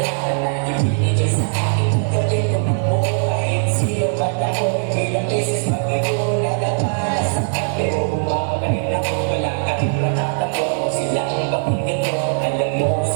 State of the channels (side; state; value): left; silent; 66 dB below the other